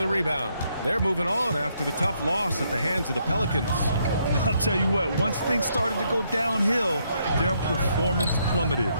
a rebound. They're moving on after the tough loss at the hands of the Pelicans. I'll tell you what, once things started to go downhill, their performance plummeted.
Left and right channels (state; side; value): inverted; both; correlation -0.74